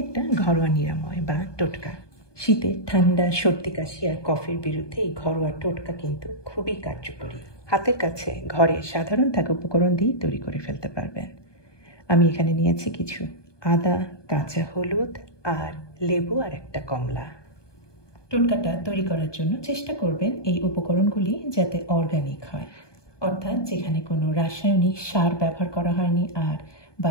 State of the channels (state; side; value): late; right; 1.2 ms